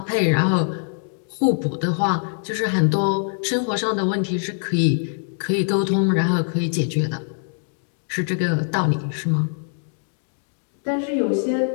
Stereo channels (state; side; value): silent; right; digital silence